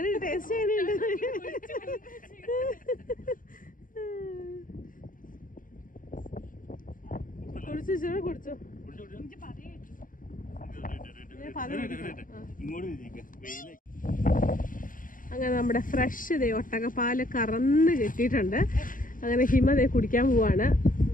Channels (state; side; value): late; right; 0.40 ms